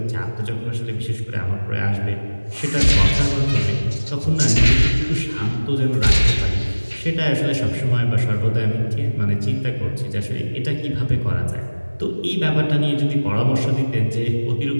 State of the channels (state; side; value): inverted; both; correlation -1.00